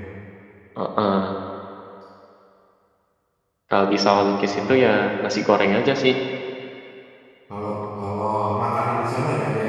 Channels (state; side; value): identical; both; correlation 1.00